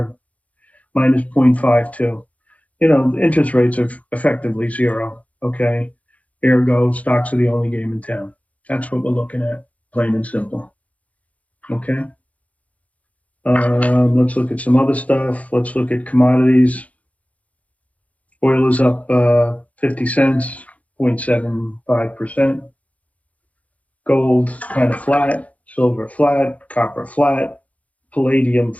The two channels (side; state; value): right; late; 0.068 ms